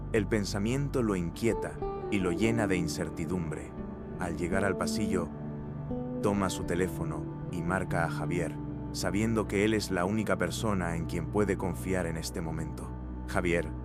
El pensamiento lo inquieta y lo llena de incertidumbre. Al llegar al pasillo, toma su teléfono y marca a Javier, sabiendo que él es la única persona en quien puede confiar en este momento. Javier,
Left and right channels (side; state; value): both; identical; correlation 1.00